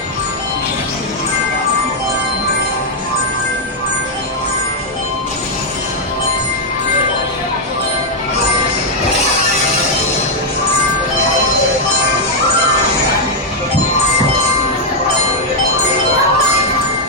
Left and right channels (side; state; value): both; normal; correlation -0.02